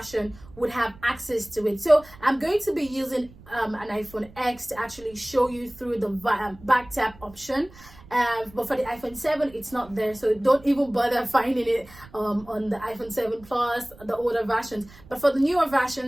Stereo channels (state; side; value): noise; right; rumble, 22 dB below the sound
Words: would have access to it. So I'm going to be using an iPhone X to actually show you through the back tap option. But for the iPhone 7, it's not there, so don't even bother finding it on the iPhone 7 Plus, the older versions. But for the newer